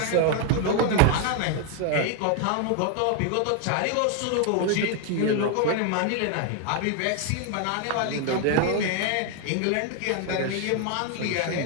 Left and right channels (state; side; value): different; both; correlation 0.01